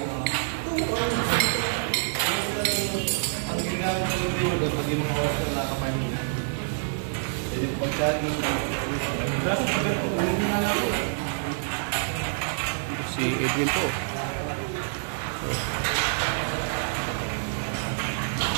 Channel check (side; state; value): left; silent; digital silence